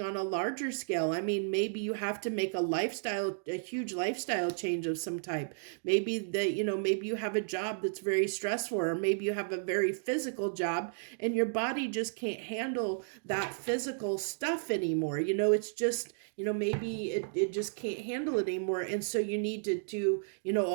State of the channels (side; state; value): left; silent; digital silence